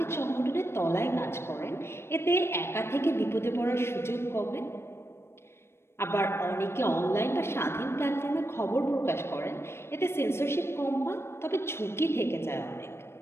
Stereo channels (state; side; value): late; right; 0.12 ms